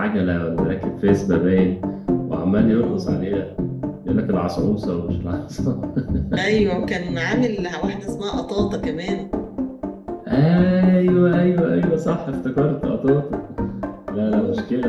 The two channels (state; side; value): identical; both; correlation 1.00